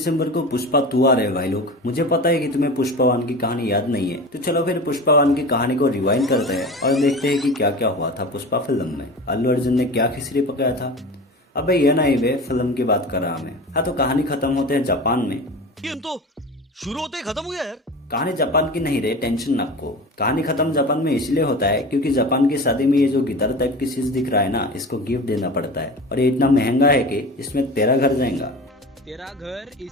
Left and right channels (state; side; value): normal; both; correlation 0.33